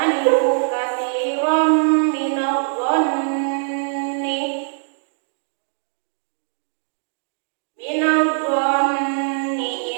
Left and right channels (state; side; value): silent; left; digital silence